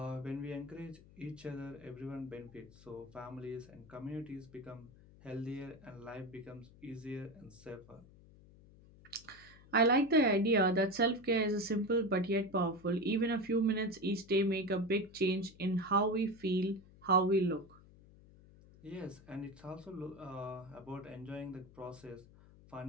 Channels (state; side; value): noise; left; hum, 23 dB below the sound